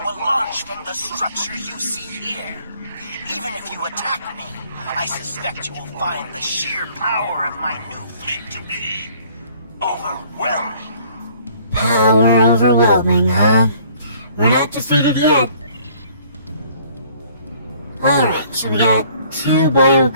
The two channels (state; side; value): inverted; both; correlation -0.57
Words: launch from the structure you see here. Even if you attack me, I suspect you will find the sheer power of my new fleet to be overwhelming. Power overwhelming, huh? We're not defeated yet. Alright, so we got 2 bio